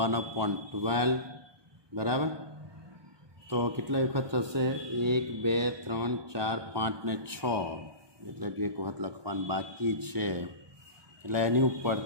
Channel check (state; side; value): late; left; 1.2 ms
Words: બરાબર. તો કેટલા વખત થશે? 1 2 3 4 5 ને 6, એટલે કે એક વખત લખવાનું બાકી છે. એટલે એની